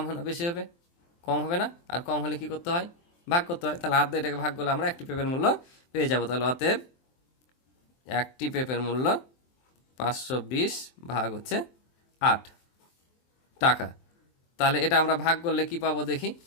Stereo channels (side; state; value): right; late; 23 ms